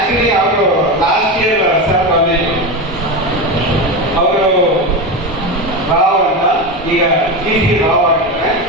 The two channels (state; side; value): normal; both; correlation 0.18